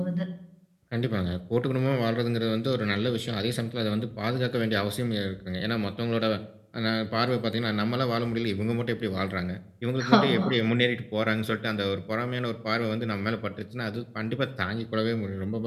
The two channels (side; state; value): both; identical; correlation 1.00